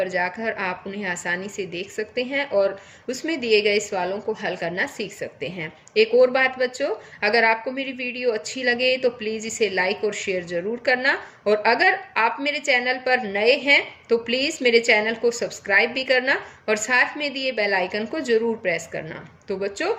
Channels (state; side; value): identical; both; correlation 1.00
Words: जाकर आप उन्हें आसानी से देख सकते हैं और उसमें दिए गए सवालों को हल करना सीख सकते हैं। एक और बात बच्चों, अगर आपको मेरी वीडियो अच्छी लगे तो प्लीज़ इसे लाइक और शेयर ज़रूर करना, और अगर आप मेरे चैनल पर नए हैं तो प्लीज़ मेरे चैनल को सब्सक्राइब भी करना और साथ में दिए बेल आइकन को ज़रूर प्रेस करना। तो बच्चों,